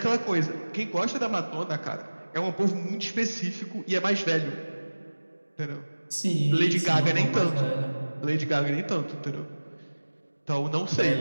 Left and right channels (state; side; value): inverted; both; correlation -1.00